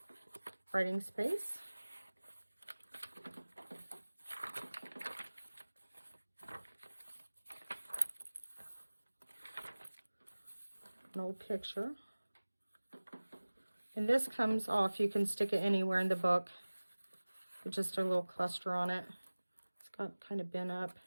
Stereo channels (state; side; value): inverted; both; correlation -1.00